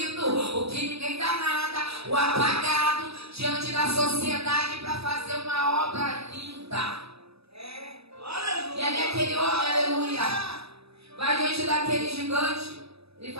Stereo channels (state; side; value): late; left; 0.78 ms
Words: o que ninguém dá nada, o apagado, diante da sociedade para fazer uma obra linda. E ali aquele homem, aleluia, vai diante daquele gigante. Ele